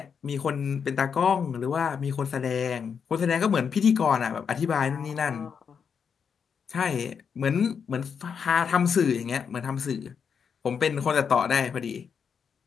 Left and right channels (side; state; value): right; quieter; 6.7 dB